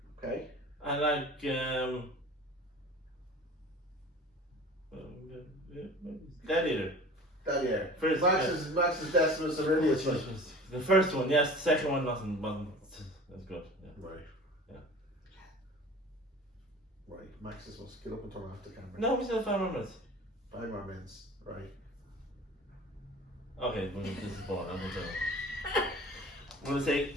Okay. I like Gladiator. First, Max's Decimus Aurelius. Like. The first one, yes. The second one wasn't as good. Yeah. Right. Yeah. Right. Max's must get up and turn off the camera. No, we still have 5 more minutes. 5 more minutes. Right. Okay, this is boring. I'm going to say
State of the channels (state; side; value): normal; both; correlation 0.41